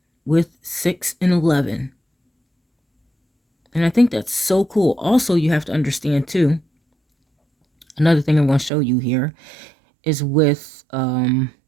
with 6 and 11. And I think that's so cool. Also, you have to understand too, another thing I'm going to show you here is with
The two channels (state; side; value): drops out; left; at 8.7 s